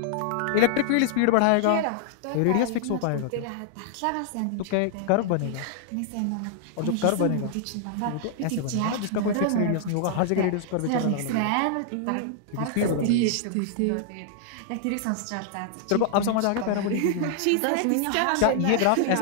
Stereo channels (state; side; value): different; both; correlation -0.01